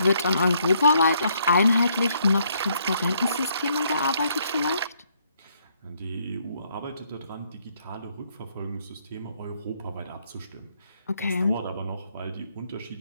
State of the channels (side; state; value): both; inverted; correlation -0.70